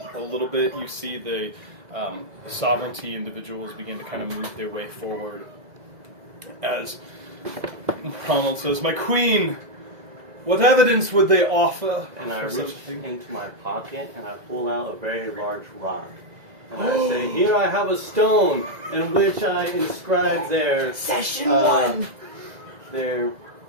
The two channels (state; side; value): late; left; 2.0 ms